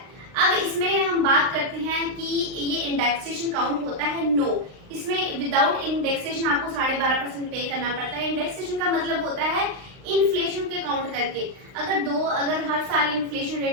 अब इसमें हम बात करते हैं कि ये इंडेक्सेशन काउंट होता है, नो, इसमें विदाउट इंडेक्सेशन आपको 12.5% पे करना पड़ता है। इंडेक्सेशन का मतलब होता है इन्फ्लेशन के काउंट करके, अगर हर साल इन्फ्लेशन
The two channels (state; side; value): late; left; 39 ms